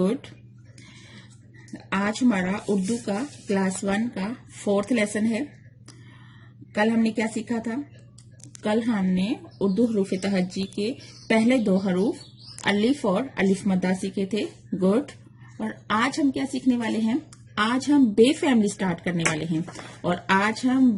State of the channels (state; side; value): identical; both; correlation 1.00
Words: आज हमारा उर्दू का क्लास 1 का 4th लेसन है। कल हमने क्या सीखा था? कल हमने उर्दू हरूफ तहज्जी के पहले 2 हरूफ अलिफ और अलिफ मद्दा सीखे थे। गुड। और आज हम क्या सीखने वाले हैं? आज हम बे फैमिली स्टार्ट करने वाले हैं और आज हम